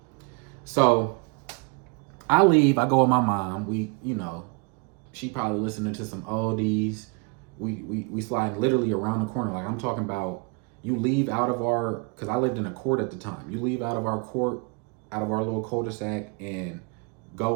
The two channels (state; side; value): quieter; left; 32.7 dB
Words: So I leave, I go with my mom. We, she probably listening to some oldies. We slide literally around the corner. Like I'm talking about, you leave out of because I lived in a court at the time. You leave out of our court, out of our little cul-de-sac, and go